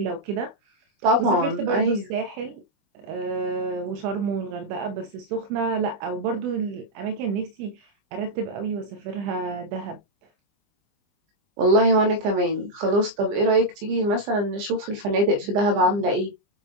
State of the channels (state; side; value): late; left; 20 ms